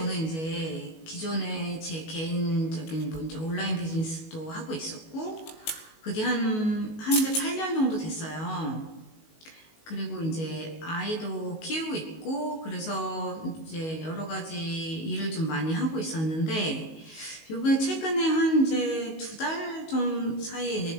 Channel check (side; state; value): right; late; 19 ms